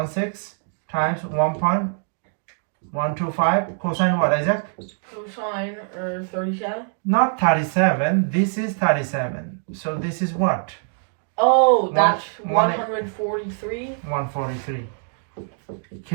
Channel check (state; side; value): silent; left; 58 dB below the other